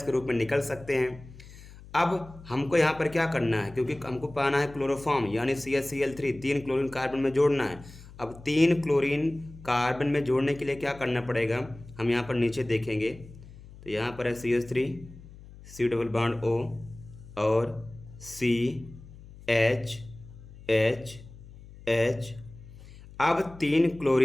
के रूप में निकल सकते हैं। अब हमको यहाँ पर क्या करना है, क्योंकि हमको पाना है क्लोरोफॉर्म यानी CHCl3, 3 क्लोरीन कार्बन में जोड़ना है। अब 3 क्लोरीन कार्बन में जोड़ने के लिए क्या करना पड़ेगा, हम यहाँ पर नीचे देखेंगे तो यहाँ पर है CH3, C double bond O और CH। अब 3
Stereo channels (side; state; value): left; noise; hum, 18 dB below the sound